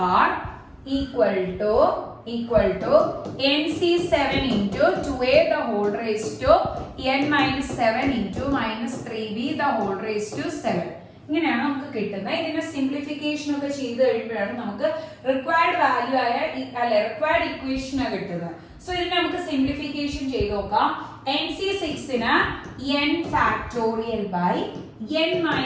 r equal to nc7 into 2a the whole raised to n minus 7 into minus 3b the whole raised to 7. ഇങ്ങനെയാണ് നമുക്ക് കിട്ടുന്നത്. ഇതിന്റെ simplification ഒക്കെ ചെയ്ത് കഴിയുമ്പോഴാണ് നമുക്ക് required value ആയ required equation കിട്ടുന്നത്. സോ ഇതിനെ നമുക്ക് സിംപ്ലിഫിക്കേഷൻ ചെയ്ത് നോക്കാം. nc6 ന് n factorial by n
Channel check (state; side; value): identical; both; correlation 1.00